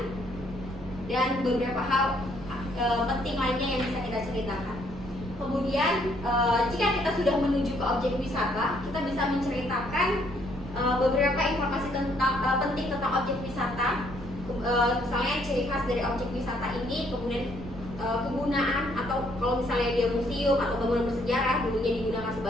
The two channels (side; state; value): right; noise; rumble, 13 dB below the sound